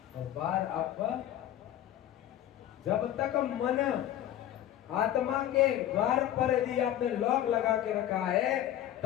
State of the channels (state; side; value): quieter; right; 12.2 dB